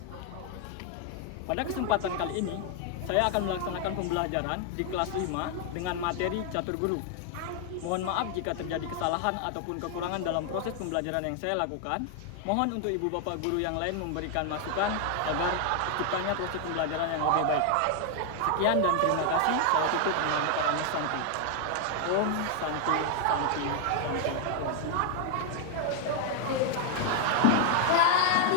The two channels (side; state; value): both; different; correlation 0.00